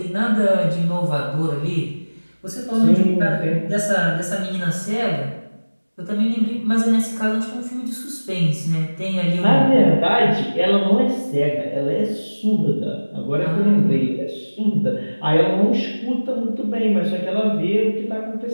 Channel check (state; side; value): inverted; both; correlation -1.00